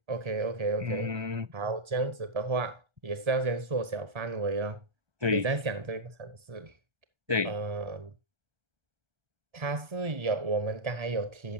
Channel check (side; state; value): left; late; 1.3 ms